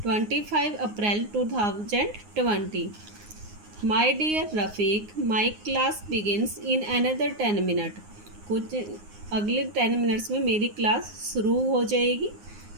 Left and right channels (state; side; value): late; left; 9.6 ms